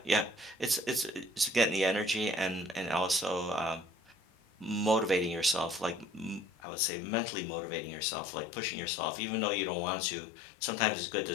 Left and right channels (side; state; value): right; drops out; at 6.5 s